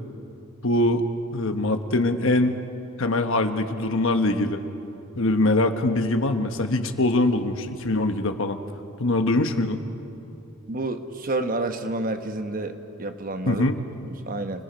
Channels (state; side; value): normal; both; correlation 0.37